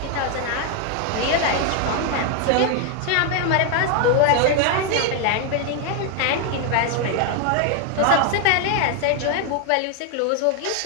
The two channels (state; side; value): different; both; correlation 0.01